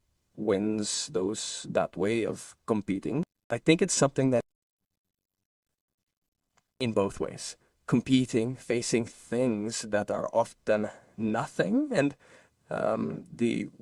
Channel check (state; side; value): identical; both; correlation 1.00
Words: wins, that way of competing. I think it's something that in both ways, competing, facing things that are often nothing, and the